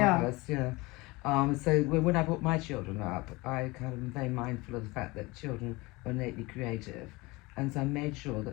So when I brought my children up, I kind of am very mindful of the fact that children are innately creative. And so I made sure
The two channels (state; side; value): quieter; right; 23.1 dB